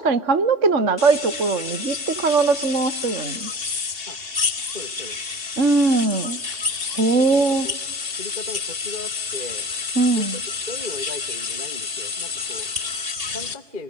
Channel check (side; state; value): left; late; 2.7 ms